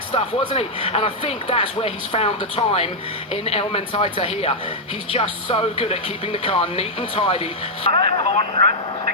stuff, wasn't he? And I think that's where he's found the time in El Mentaita here. He's just so good at keeping the car neat and tidy.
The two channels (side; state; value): both; normal; correlation -0.03